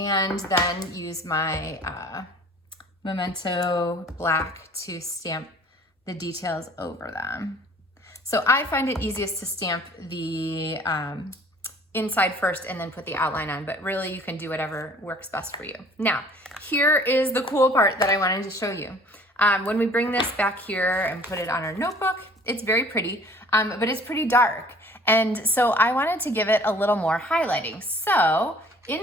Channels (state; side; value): normal; both; correlation 0.52